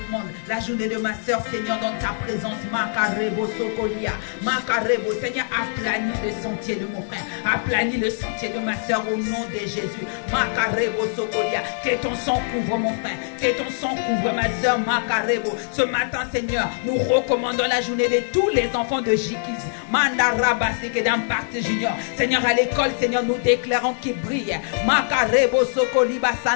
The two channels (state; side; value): silent; right; digital silence